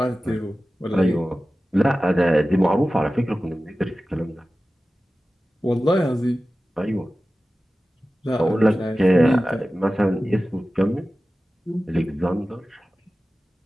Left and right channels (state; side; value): normal; both; correlation 0.95